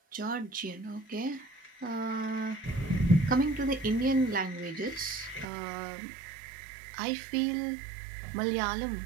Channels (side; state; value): left; drops out; at 5.5 s